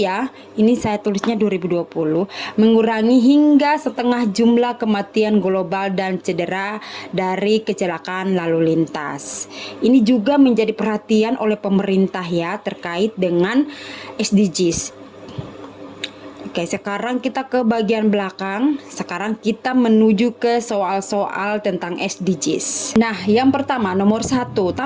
Ini saya tulisnya 2020, mengurangi hingga setengah jumlah kematian global dan cedera dari kecelakaan lalu lintas. Ini juga menjadi perhatian oleh pemerintah ya terkait dengan SDGs. Oke, sekarang kita ke bagian belakang. Sekarang kita menuju ke soal-soal tentang SDGs. Nah, yang pertama nomor 1,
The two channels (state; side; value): identical; both; correlation 1.00